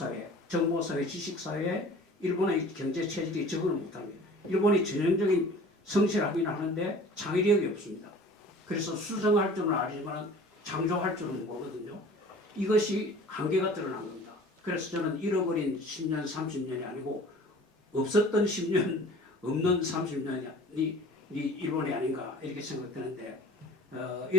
정보 사회, 지식 사회에 일본의 경제 체질이 적응을 못합니다. 일본이 전형적인 성실하긴 하는데 창의력이 없습니다. 그래서 수정할 줄은 알지만 창조할 줄은 모르거든요. 이것이 한계가 드러난 겁니다. 그래서 저는 잃어버린 10년, 30년이 아니고 없었던 10년, 없는 30년이 일본이 아닌가 이렇게 생각되는데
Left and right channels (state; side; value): normal; both; correlation 0.45